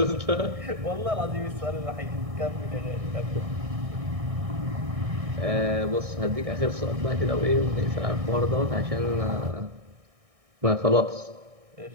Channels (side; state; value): left; late; 1.6 ms